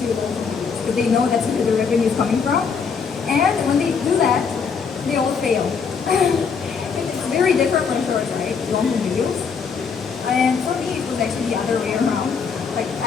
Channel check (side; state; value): right; quieter; 5.9 dB